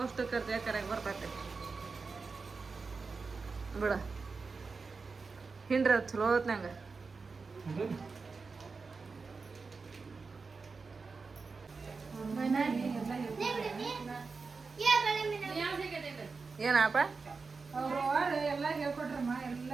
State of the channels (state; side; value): quieter; left; 4.5 dB